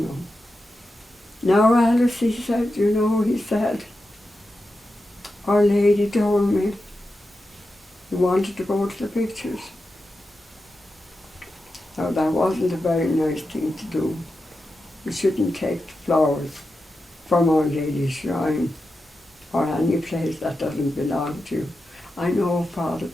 know." "Now, Alice," he said, "you know," he said, "Our Lady told me you wanted to go to the pictures." Now that wasn't a very nice thing to do. You shouldn't take the flowers from Our Lady's shrine or any place that doesn't belong to you. "I know, Father,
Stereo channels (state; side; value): normal; both; correlation 0.90